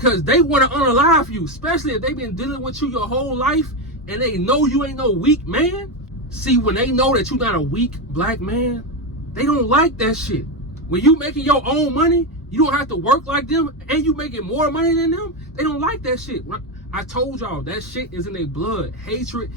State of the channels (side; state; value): both; normal; correlation 0.11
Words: they want to unalive you, especially if they've been dealing with you your whole life and they know you ain't no weak man. See, when they know that you're not a weak black man, they don't like that shit. When you making your own money, you don't have to work like them and you making more money than them, they don't like that shit. I told y'all that shit is in their blood. Hatred